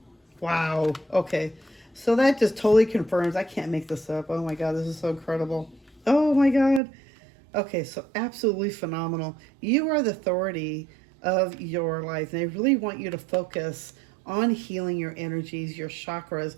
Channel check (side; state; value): left; drops out; at 6.8 s